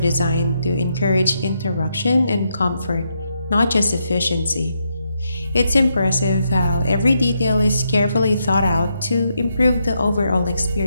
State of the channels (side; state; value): both; inverted; correlation -0.80